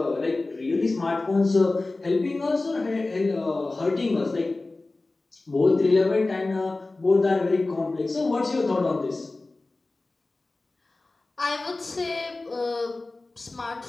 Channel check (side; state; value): right; quieter; 3.2 dB